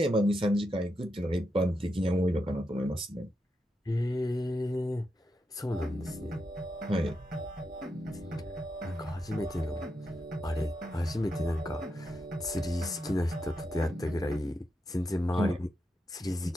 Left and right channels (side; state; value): both; normal; correlation 0.85